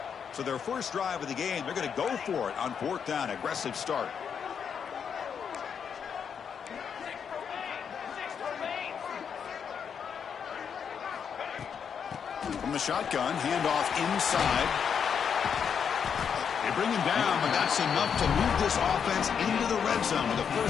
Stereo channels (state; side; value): quieter; right; 7.2 dB